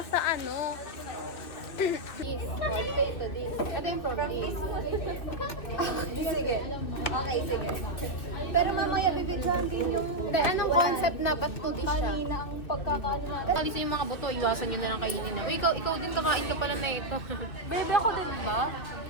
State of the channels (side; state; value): right; late; 2.6 ms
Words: ano. This. Oh, dito ito. This. Ito yung from this. Sige. Okay, sige. Pero mamaya bibigyan din yung... anong concept na ba't to this siya? Kanina ang pagkakaano natin. Alis yung mga buto, iwasan nyo na lang kainin na. Uy, ikaw din kakain ka pala na ito. Baby, ako din ba?